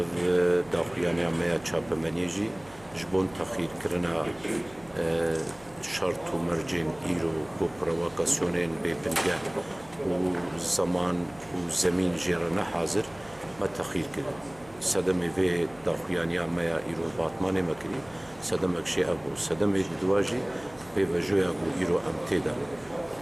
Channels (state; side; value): noise; right; hum, 23 dB below the sound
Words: daxuyaniya me ya çapemeniyê jî ji bo texîrkirina şart û mercên îro ku provokasyonên bêbingeh û zaman û zemîn jê re nehazir me texîr kirin. Sedemê vê daxuyaniya me ya îro batmanê me kirî, sedemek jî ev bû. Sedemê di duwa jî pêvejoya ku îro em têde